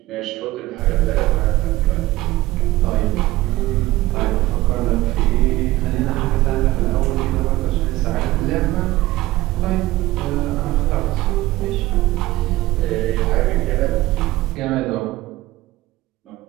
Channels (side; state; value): left; quieter; 17.7 dB